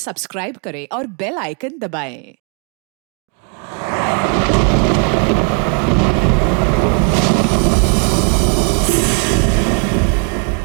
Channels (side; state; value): left; quieter; 37.8 dB